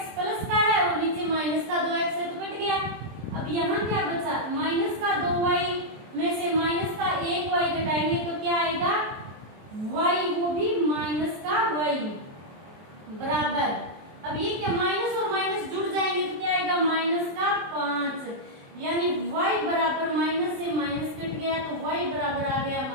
प्लस का है और नीचे माइनस का 2x है तो कट गया। अब यहाँ क्या बचा माइनस का 2y में से माइनस का 1y घटाएंगे तो क्या आएगा y, वो भी माइनस का y बराबर। अब ये क्या माइनस और माइनस जुड़ जाएंगे तो क्या आएगा माइनस का 5 यानी y बराबर माइनस से माइनस कट गया तो y बराबर आ गया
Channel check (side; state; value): left; late; 23 ms